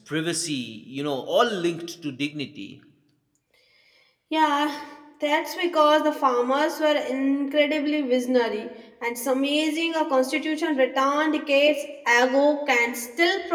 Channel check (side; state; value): both; identical; correlation 1.00